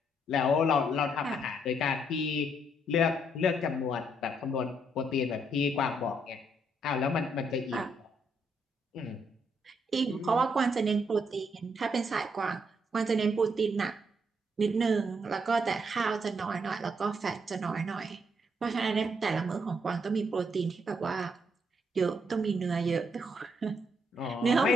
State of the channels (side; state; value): both; normal; correlation 0.74